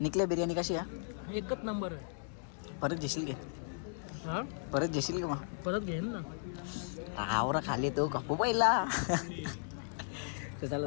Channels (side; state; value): right; silent; 54 dB below the other